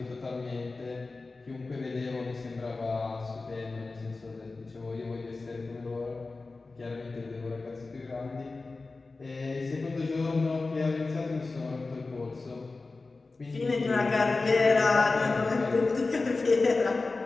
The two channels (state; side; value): quieter; right; 3.7 dB